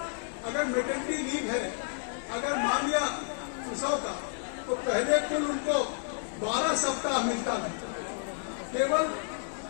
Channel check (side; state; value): right; silent; digital silence